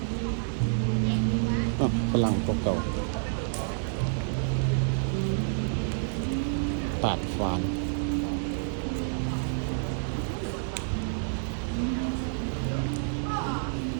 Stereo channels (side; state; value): left; silent; 56 dB below the other